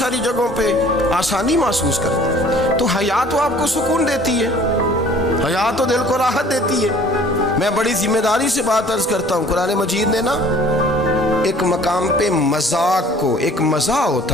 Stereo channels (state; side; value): normal; both; correlation 0.52